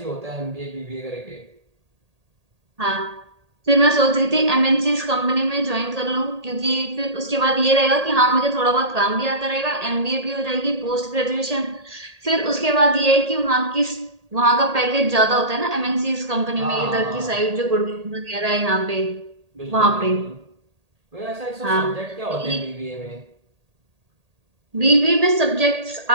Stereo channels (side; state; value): left; late; 1.8 ms